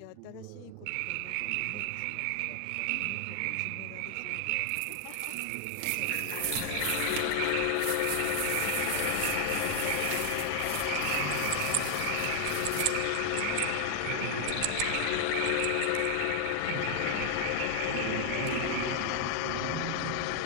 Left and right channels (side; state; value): both; different; correlation 0.00